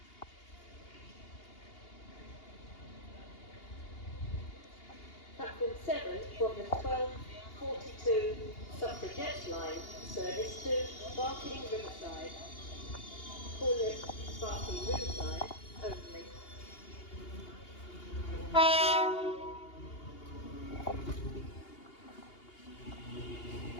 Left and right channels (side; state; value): right; late; 2.8 ms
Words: Platform 7 from the 12:42 Suffragette line, service to Barking Riverside. Call it Barking Riverside only.